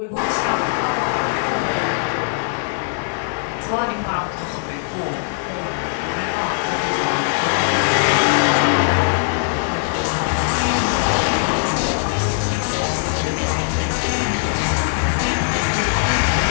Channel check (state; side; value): silent; right; digital silence